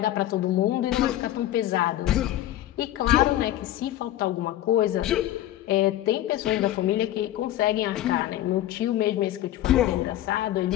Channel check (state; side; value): quieter; right; 13.6 dB